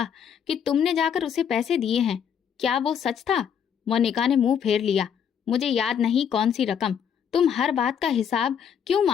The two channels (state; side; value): quieter; right; 8.0 dB